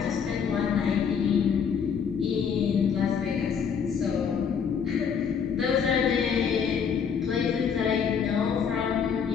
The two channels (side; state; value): right; quieter; 7.0 dB